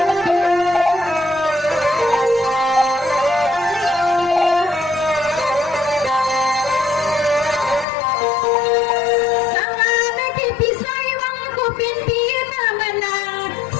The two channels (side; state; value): right; drops out; at 7.9 s